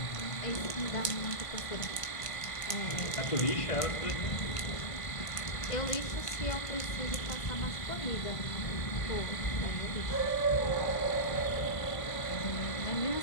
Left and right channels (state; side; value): late; right; 1.5 ms